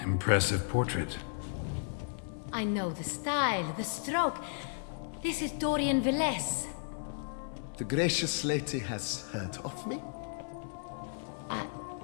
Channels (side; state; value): right; silent; 55 dB below the other